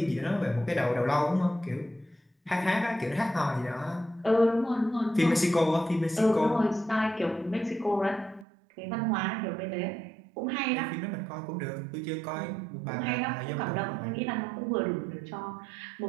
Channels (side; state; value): left; drops out; at 8.5 s